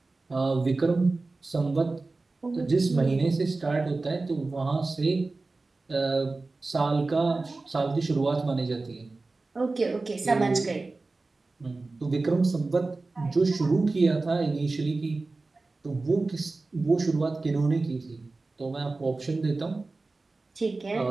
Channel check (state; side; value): quieter; left; 3.5 dB